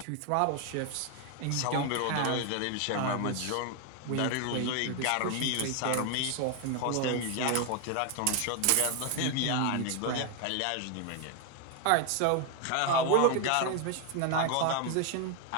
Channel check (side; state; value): both; different; correlation 0.01